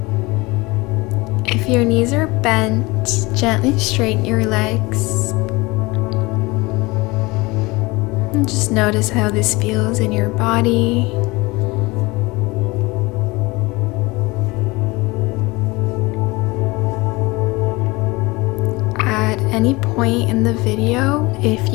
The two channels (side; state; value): right; quieter; 23.2 dB